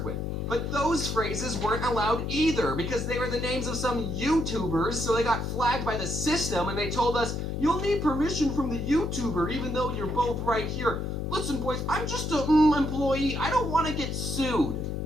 with. But those phrases weren't allowed either because they were the names of some YouTubers, so they got flagged by the system and they told us, you'll need permission from the YouTuber even though you're both right here. Listen, boys, I'm just a employee. I don't want to get sued.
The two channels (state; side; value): noise; left; hum, 3 dB below the sound